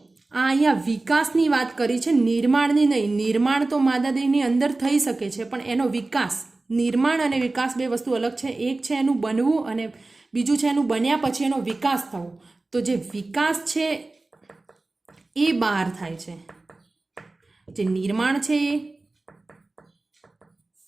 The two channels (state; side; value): quieter; left; 3.2 dB